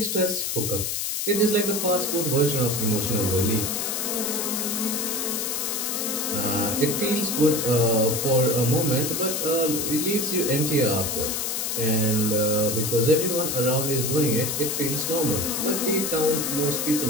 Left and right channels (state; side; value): noise; left; hiss, 1 dB below the sound